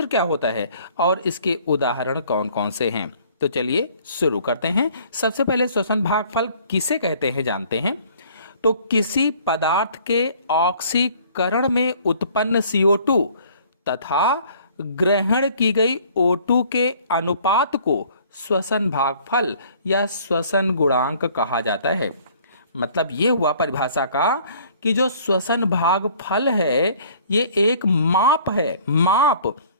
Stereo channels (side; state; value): both; inverted; correlation -0.55